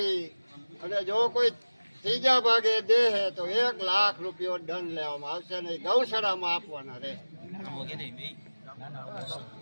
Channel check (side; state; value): both; inverted; correlation -1.00